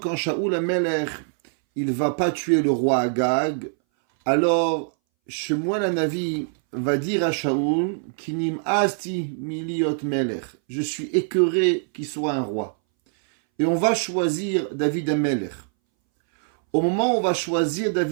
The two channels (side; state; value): left; silent; 61 dB below the other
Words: Shaoul Amelech, il va pas tuer le roi Agag, alors Shemuel Hanavi va dire à Shaoul, Kinim asti miliot melech, je suis écœuré qu'il soit un roi. Et on va choisir David Amelech. Au moment où on va choisir